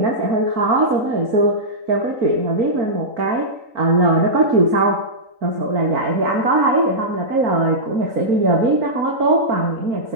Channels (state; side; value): late; left; 3.9 ms